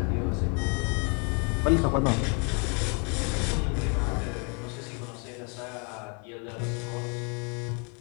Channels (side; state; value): right; quieter; 35.6 dB